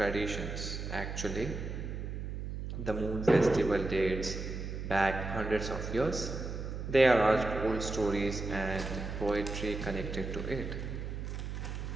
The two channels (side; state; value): right; noise; hum, 5 dB below the sound